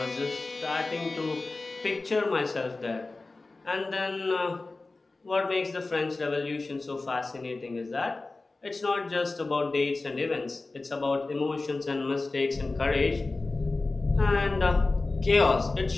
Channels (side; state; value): right; quieter; 3.4 dB